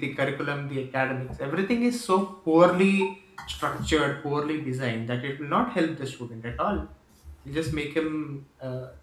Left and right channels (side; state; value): both; identical; correlation 1.00